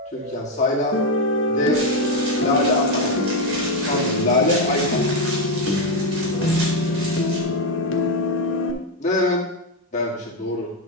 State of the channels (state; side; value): normal; both; correlation 0.05